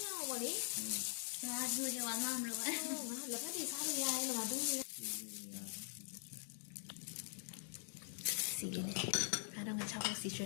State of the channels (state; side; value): silent; right; digital silence